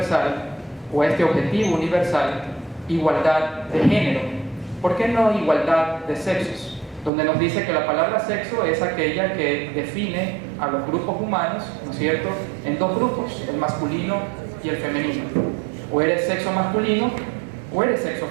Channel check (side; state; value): left; drops out; at 7.1 s